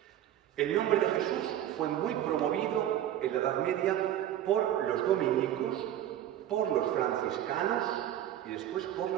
El nombre de Jesús fue muy promovido en la Edad Media por los dominicos, por los franciscanos y después por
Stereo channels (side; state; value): left; quieter; 11.7 dB